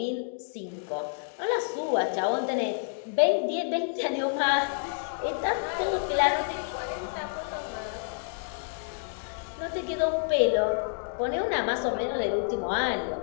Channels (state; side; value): silent; right; digital silence